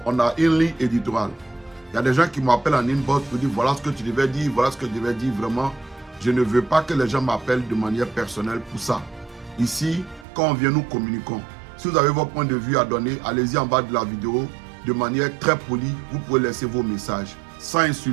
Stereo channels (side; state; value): left; drops out; at 10.2 s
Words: a une ligne éditoriale. Il y a des gens qui m'appellent en inbox pour dire voilà ce que tu devais dire, voilà ce que tu devais dire. Vraiment, je ne veux pas que les gens m'appellent de manière personnelle pour ça. Ici, quand on vient, nous communiquons. Si vous avez votre point de vue à donner, allez-y en bas de la vidéo. De manière très polie, vous pouvez laisser vos messages sans